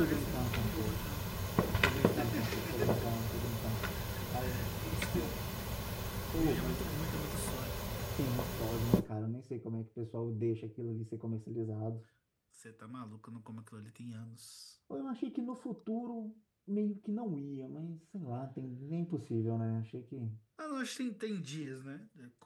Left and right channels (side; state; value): both; identical; correlation 1.00